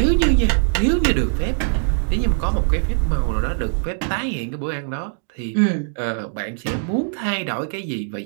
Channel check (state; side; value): silent; left; digital silence